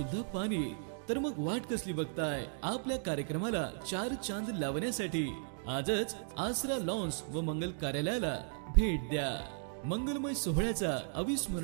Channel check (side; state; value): left; silent; digital silence